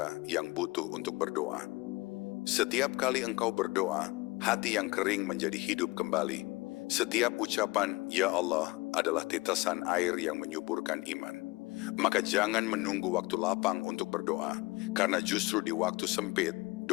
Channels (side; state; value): right; quieter; 23.0 dB